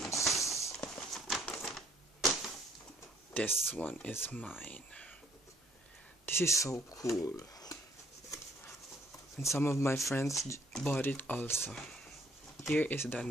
This one is mine. This is so cool. And some of my friends bought it also. Here is the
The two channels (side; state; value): both; normal; correlation 0.63